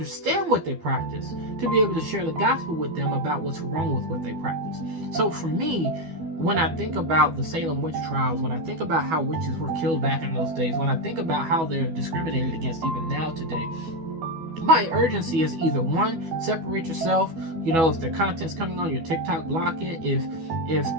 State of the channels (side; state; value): left; late; 12 ms